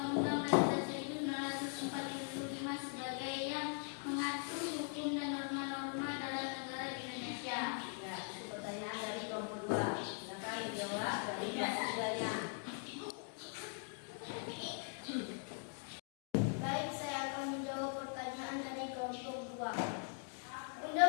Dasar 1945 sebagai yang mengatur hukum dan norma-norma dalam negara Indonesia? Ya, itu pertanyaan dari kelompok 2. Silakan dijawab dari hasilnya. Baik, saya akan menjawab pertanyaan dari kelompok 2.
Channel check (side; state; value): right; silent; 50 dB below the other